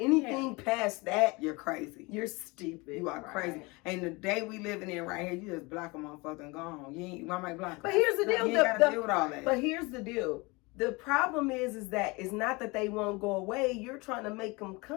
past that, you're crazy. You're stupid. You are crazy. And the day we living in right here, you just block a motherfucker and go on. You might block. But here's the deal. You ain't gotta deal with all that. But here's the deal. The problem is that it's not that they won't go away. You're trying to make them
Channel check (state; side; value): quieter; right; 25.7 dB